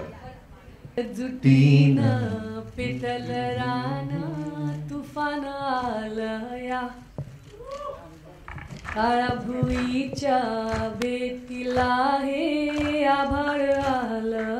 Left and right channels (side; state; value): both; identical; correlation 1.00